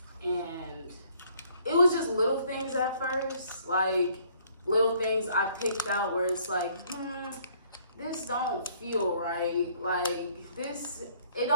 And it was just little things at first, like little things I picked out where it's like, this don't feel right, like this, it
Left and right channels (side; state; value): both; inverted; correlation -0.62